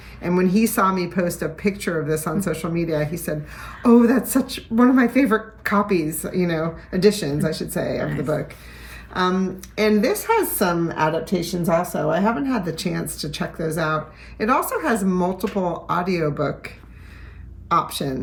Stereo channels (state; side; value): identical; both; correlation 1.00